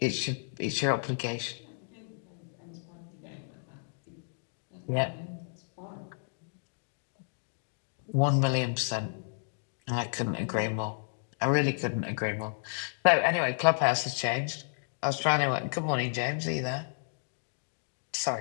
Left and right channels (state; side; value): silent; right; digital silence